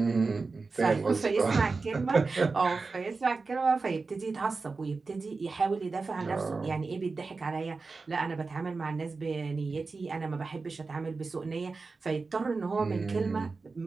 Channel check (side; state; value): left; quieter; 4.1 dB